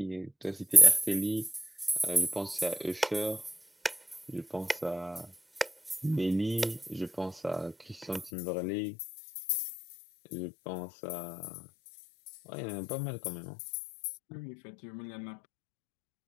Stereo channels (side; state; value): right; drops out; at 8.3 s